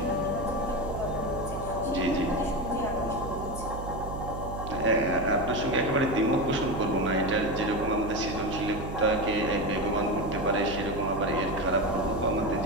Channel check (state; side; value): noise; right; hum, 8 dB below the sound